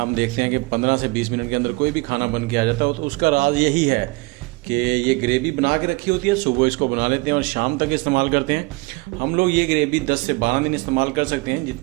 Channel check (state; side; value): quieter; left; 25.0 dB